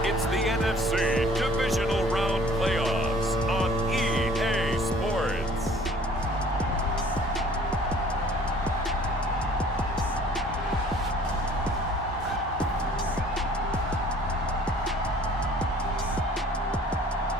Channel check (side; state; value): both; normal; correlation 0.53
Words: it's the NFC Divisional Round Playoffs on EA Sports.